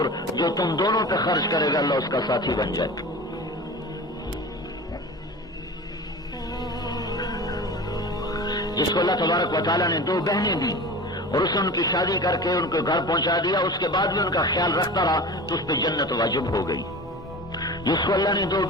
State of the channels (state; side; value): normal; both; correlation 0.35